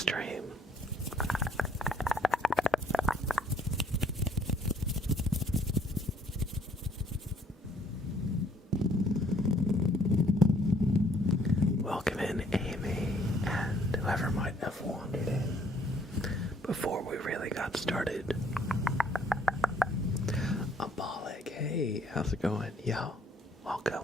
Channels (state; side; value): normal; both; correlation 0.63